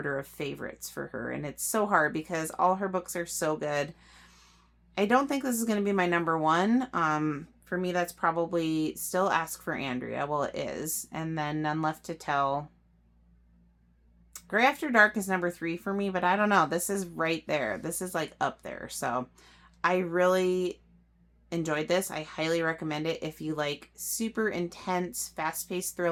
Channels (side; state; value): both; identical; correlation 1.00